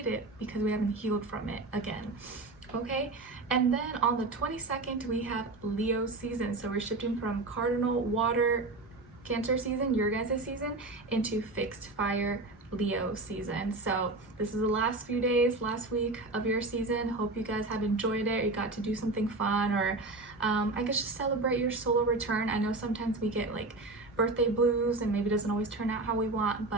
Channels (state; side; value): quieter; left; 3.1 dB